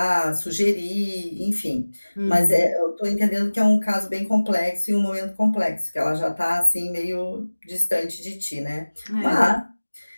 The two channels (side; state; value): both; inverted; correlation -1.00